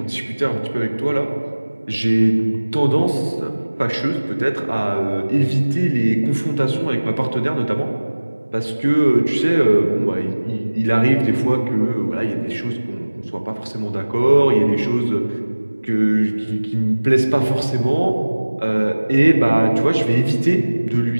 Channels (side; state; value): both; inverted; correlation -1.00